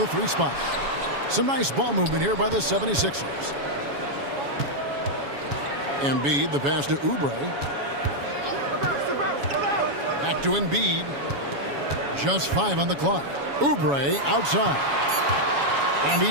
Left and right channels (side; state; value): left; late; 7.1 ms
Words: 3 spot. Some nice ball movement here by the 76ers. Embiid, the pass to Oubre. Back to Embiid. Just 5 on the clock. Oubre outside. And he